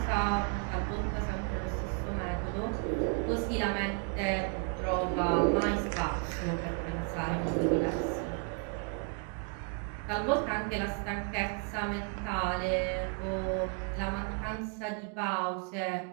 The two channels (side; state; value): left; quieter; 39.1 dB